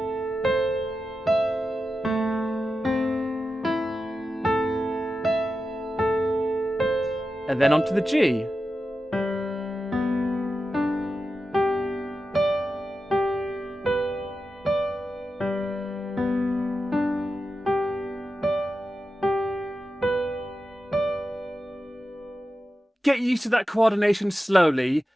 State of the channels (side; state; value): both; normal; correlation 0.91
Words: And then onto the G. Get used to that coordination slowly,